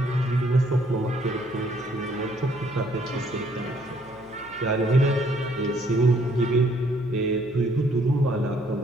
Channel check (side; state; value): left; noise; hum, 25 dB below the sound